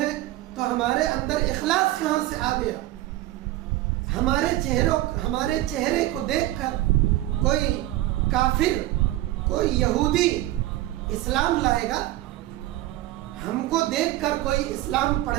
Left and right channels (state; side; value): quieter; left; 16.1 dB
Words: تو ہمارے اندر اخلاص کہاں سے آ گیا؟ ہمارے چہرے کو دیکھ کر کوئی کافر, کوئی یہودی اسلام لائے گا؟ ہم کو دیکھ کر کوئی اسلام